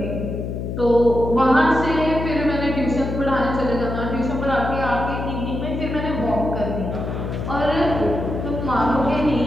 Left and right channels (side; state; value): left; noise; hum, 5 dB below the sound